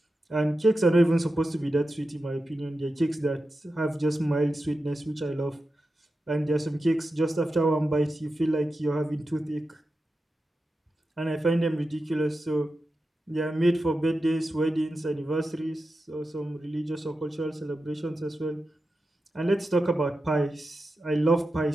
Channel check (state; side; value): normal; both; correlation 0.91